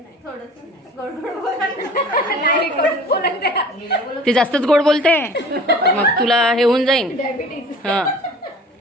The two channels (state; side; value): normal; both; correlation 0.45